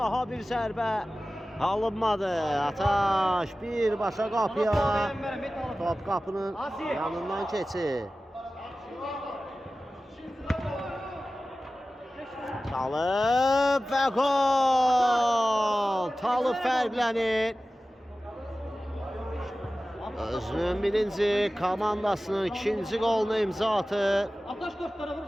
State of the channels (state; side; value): normal; both; correlation 0.96